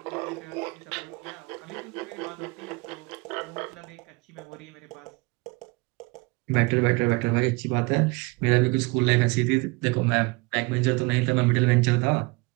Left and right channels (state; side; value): quieter; left; 26.5 dB